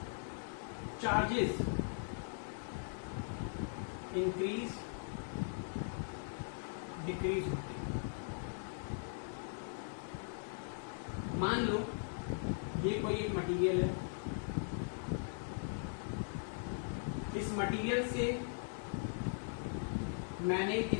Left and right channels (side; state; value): right; silent; 51 dB below the other